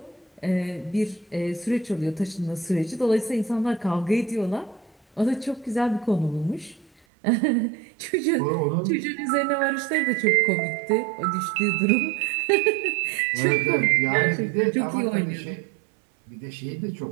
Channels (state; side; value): drops out; left; at 6.9 s